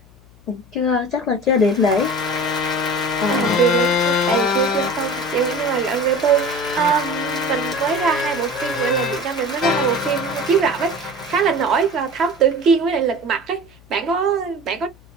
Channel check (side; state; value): left; noise; hum, 26 dB below the sound